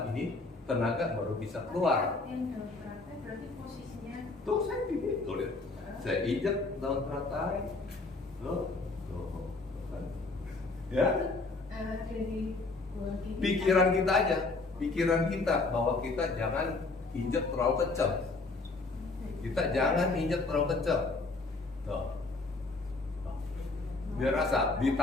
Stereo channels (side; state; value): right; quieter; 3.5 dB